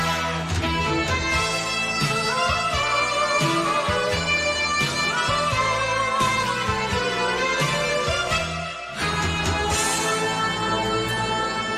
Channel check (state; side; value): identical; both; correlation 1.00